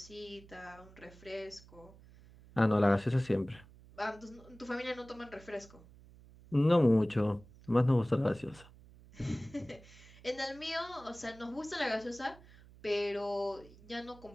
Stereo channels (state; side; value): noise; right; hum, 22 dB below the sound